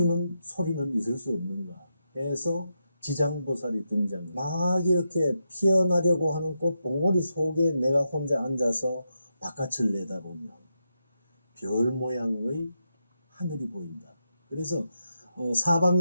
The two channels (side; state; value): both; inverted; correlation -0.85